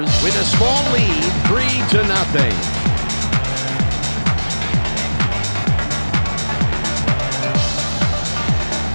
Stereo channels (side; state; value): both; inverted; correlation -1.00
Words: with a small lead, 3-0.